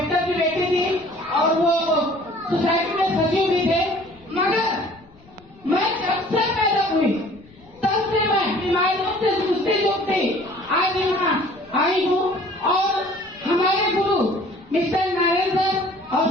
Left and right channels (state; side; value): noise; left; rumble, 27 dB below the sound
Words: की बेटी थी और वो सोसाइटी में सचिव भी थे, मगर मैं जब से पैदा हुई तब से मैं बीमारियों से जूझती आज यहाँ आई हूँ। और हमारे गुरु मिस्टर नारायण सर और